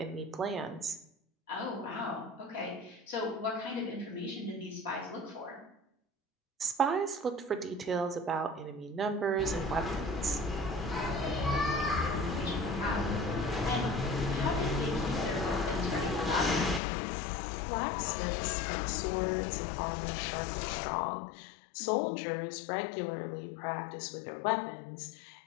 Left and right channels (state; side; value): drops out; right; at 16.8 s